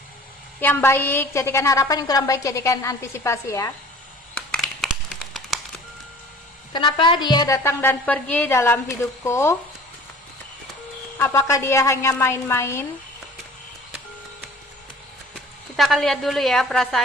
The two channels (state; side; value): normal; both; correlation 0.46